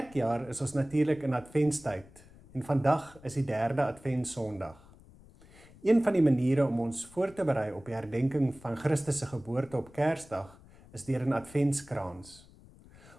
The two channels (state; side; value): noise; left; rumble, 23 dB below the sound